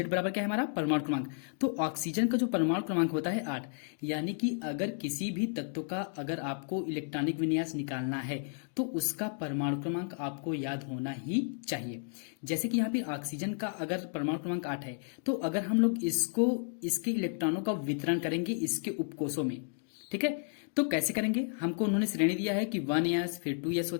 बराबर क्या है हमारा परमाणु क्रमांक। तो ऑक्सीजन का जो परमाणु क्रमांक होता है 8, यानी कि अगर किसी भी तत्व का अगर आपको इलेक्ट्रॉनिक विन्यास निकालना है तो उसका परमाणु क्रमांक आपको याद होना ही चाहिए। जैसे कि यहाँ पे ऑक्सीजन का अगर परमाणु क्रमांक 8 है तो अगर हम लोग इसको इसके इलेक्ट्रॉनों का वितरण करेंगे इसके उपकोषों में, ठीक है, तो कैसे करेंगे। हमको उन्होंने श्रेणी दिया है कि 1s फिर 2s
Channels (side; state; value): right; silent; 56 dB below the other